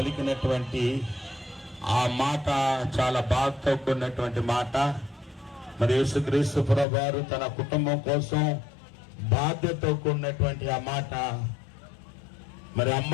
ఆ మాట చాలా బాధతో కూడినటువంటి మాట. మరి యేసుక్రీస్తు ప్రభువారు తన కుటుంబం కోసం బాధ్యతతో కూడినటువంటి ఆ మాట. మరి అమ్మ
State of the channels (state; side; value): drops out; right; at 6.9 s